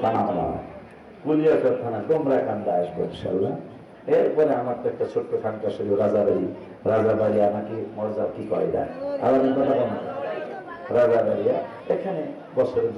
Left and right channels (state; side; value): identical; both; correlation 1.00